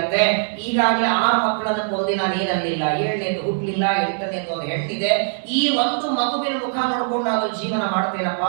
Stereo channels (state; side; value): silent; left; 65 dB below the other